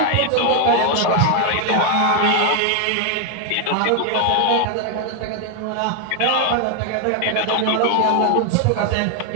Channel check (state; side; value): different; both; correlation 0.01